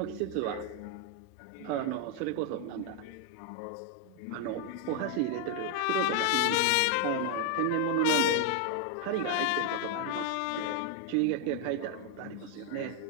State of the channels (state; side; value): different; both; correlation 0.01